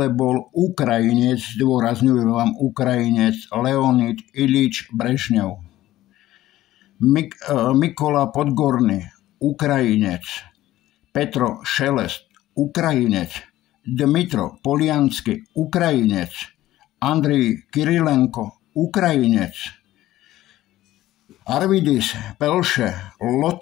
bol Ukrajinec, zdôrazňujem vám Ukrajinec, Leonid Ilič Brežňov. Mikola Podgorný, Ukrajinec. Petro Šelest, Ukrajinec. Dmitro Poliansky, Ukrajinec. Andrej Kirilenko, Ukrajinec. Arvidis Pelše,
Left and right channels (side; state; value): right; quieter; 15.0 dB